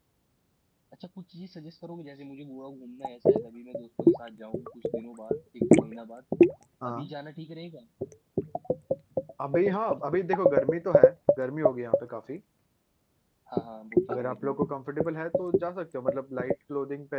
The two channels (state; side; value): identical; both; correlation 1.00